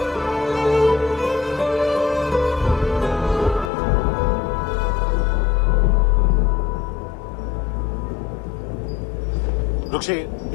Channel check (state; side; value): drops out; right; at 3.7 s